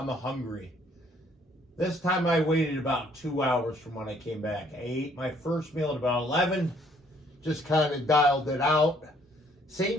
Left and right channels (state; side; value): normal; both; correlation 0.63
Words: hungry. This time I waited about 2 hours from when I came back. I ate my first meal at about 11, just kind of dialed it out. Same